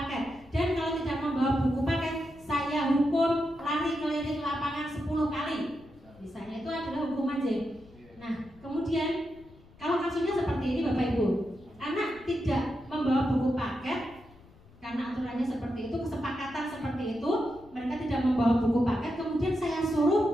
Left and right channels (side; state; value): left; noise; rumble, 25 dB below the sound